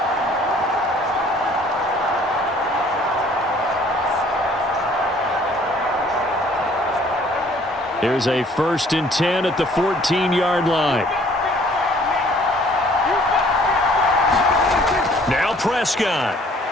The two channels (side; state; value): both; normal; correlation 0.57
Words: Here's a 1st and 10 at the 14-yard line. Now Prescott.